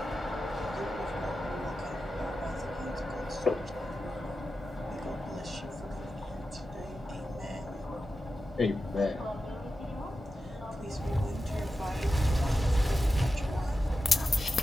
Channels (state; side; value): normal; both; correlation 0.92